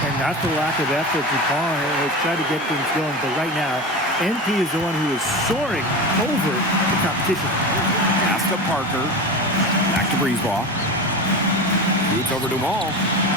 And not the lack of effort. Dupont has tried to get things going, but right now, MP is the one who is soaring over the competition. Pass to Parker. Back to Brisebois. Shoots over Dumont.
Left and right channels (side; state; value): both; normal; correlation 0.26